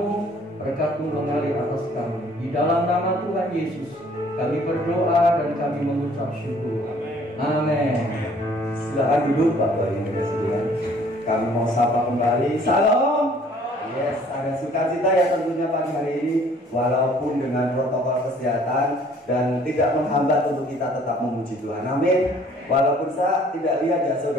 berkat-Mu mengalir atas kami. Di dalam nama Tuhan Yesus, kami berdoa dan kami mengucap syukur. Amin. Silakan duduk Bapak Ibu sekalian. Kami mau sapa kembali. Salam. Yes, ada sukacita ya tentunya pagi hari ini, walaupun dengan protokol kesehatan dan tidak menghambat untuk kita tetap memuji Tuhan. Amin. Walaupun saya tidak lihat ya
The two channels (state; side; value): normal; both; correlation 0.57